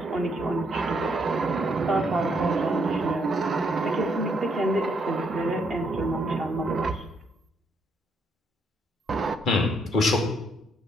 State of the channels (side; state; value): both; normal; correlation 0.73